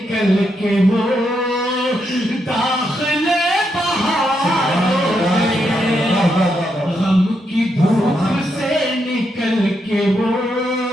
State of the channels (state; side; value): normal; both; correlation 0.81